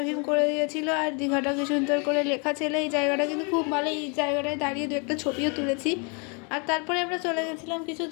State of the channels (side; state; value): right; quieter; 34.9 dB